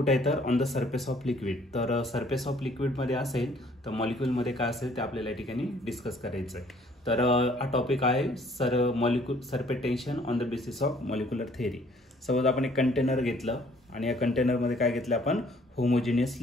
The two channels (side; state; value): both; normal; correlation 0.60